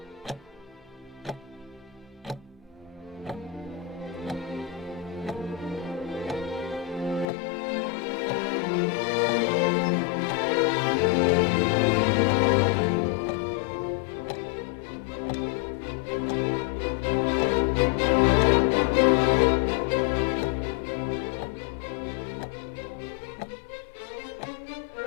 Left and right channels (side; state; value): right; drops out; at 7.2 s